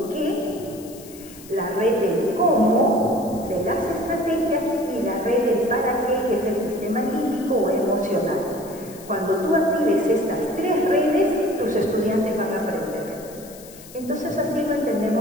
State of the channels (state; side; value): noise; left; hiss, 19 dB below the sound